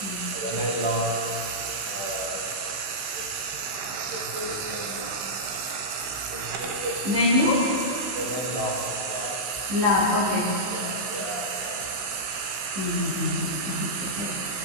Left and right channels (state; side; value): late; left; 16 ms